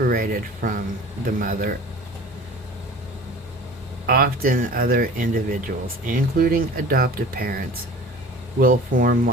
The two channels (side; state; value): both; normal; correlation 0.41